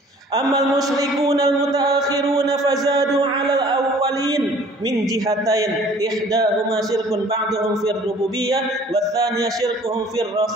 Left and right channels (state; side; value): normal; both; correlation 0.52